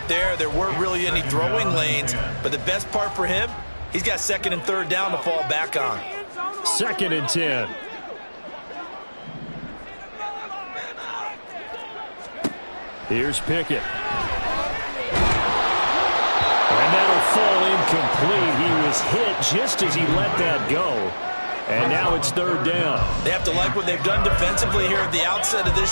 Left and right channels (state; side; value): inverted; both; correlation -1.00